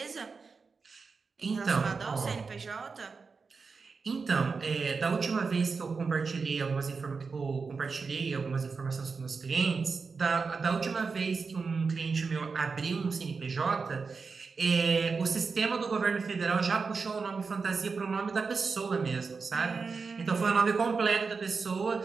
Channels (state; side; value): quieter; left; 4.8 dB